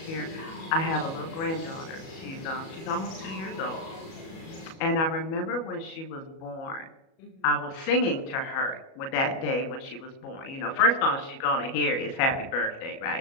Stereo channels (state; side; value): late; right; 37 ms